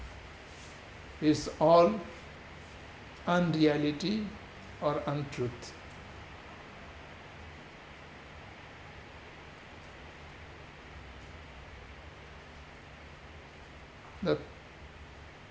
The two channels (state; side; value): identical; both; correlation 1.00